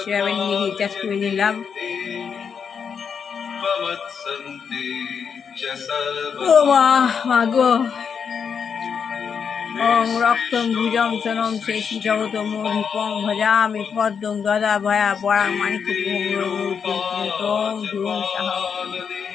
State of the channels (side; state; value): right; quieter; 6.7 dB